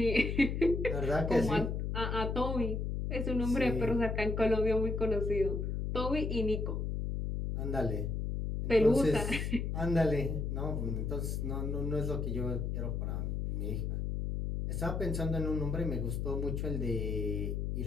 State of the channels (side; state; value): left; noise; hum, 1 dB below the sound